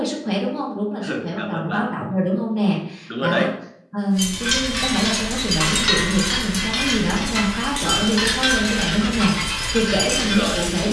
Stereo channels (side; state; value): both; identical; correlation 1.00